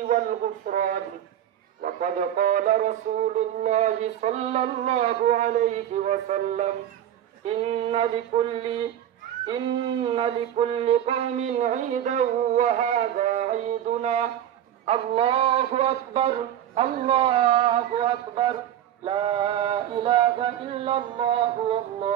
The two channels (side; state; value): left; quieter; 10.9 dB